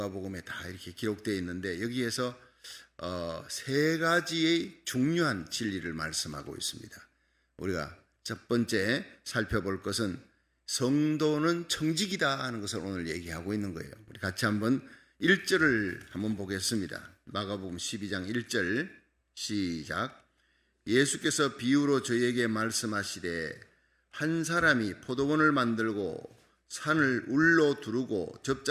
다 이렇게 기록되어 있는데 여기에서 세 가지의 중요한 진리를 말씀하고 있습니다. 우리가 첫 번째 살펴볼 것은 성도는 청직이다 하는 것을 오늘 얘기하고 있는 거예요. 우리 같이 한번 1절을 한번 보겠습니다. 마가복음 12장 1절 시작. 예수께서 비유로 저희에게 말씀하시되 한 사람이 포도원을 만들고 산을 울로 두르고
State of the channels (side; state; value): both; identical; correlation 1.00